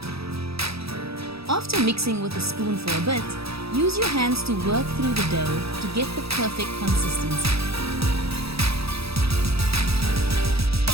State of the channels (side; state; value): left; late; 0.77 ms